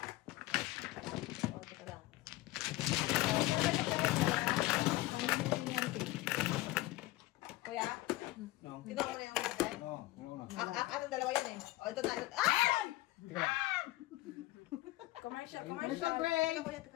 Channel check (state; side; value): quieter; right; 18.2 dB